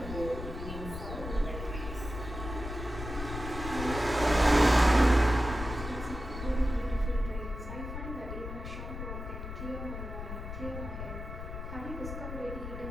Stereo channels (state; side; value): noise; left; rumble, 8 dB below the sound